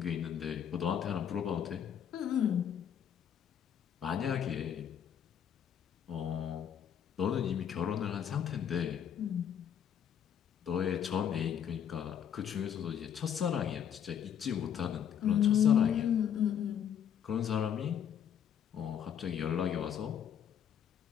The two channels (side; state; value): right; quieter; 8.8 dB